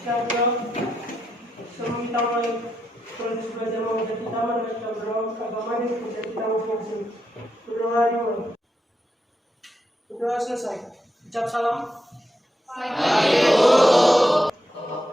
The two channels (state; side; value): normal; both; correlation 0.84